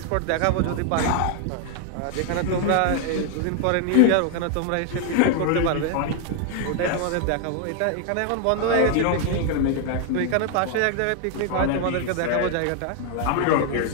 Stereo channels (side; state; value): both; different; correlation 0.00